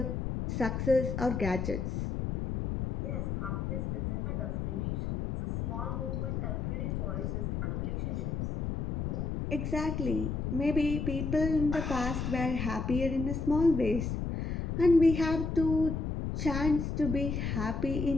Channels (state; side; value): noise; left; rumble, 2 dB below the sound